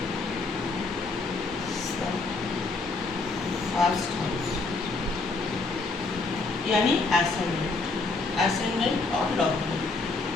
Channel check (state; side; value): quieter; right; 3.7 dB